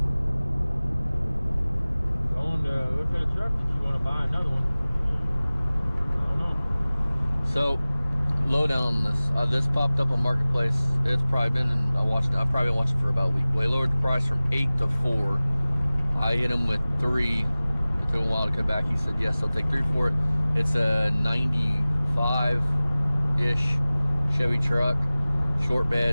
Going to look at a truck that you want to buy another one. I don't know. So, lowdown on this. This popped up on Marketplace. It's probably been, I've probably been watching for about a week. Well, he lowered the price from 8 to 4. I hit him with 3. It took him a while to come back. He said, yes, I'll take 3 for it. It's a 95-ish Chevy truck. Short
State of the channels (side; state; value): both; inverted; correlation -0.98